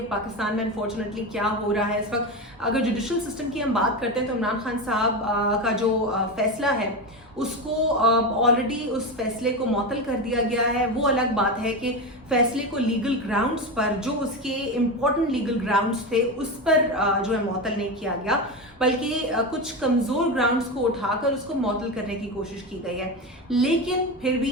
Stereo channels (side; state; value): both; normal; correlation 0.18